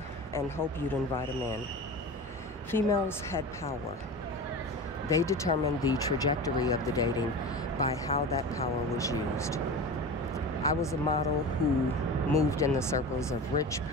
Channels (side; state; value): both; normal; correlation 0.30